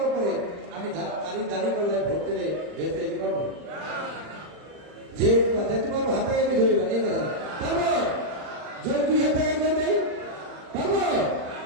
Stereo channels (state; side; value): late; left; 39 ms